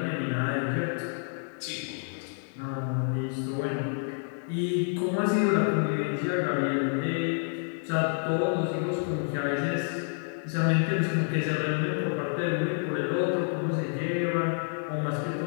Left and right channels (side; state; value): right; silent; 59 dB below the other